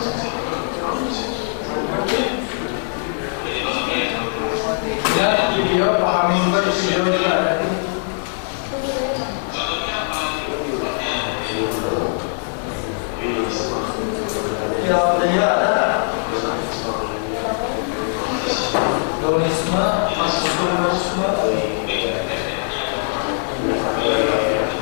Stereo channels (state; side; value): silent; right; 64 dB below the other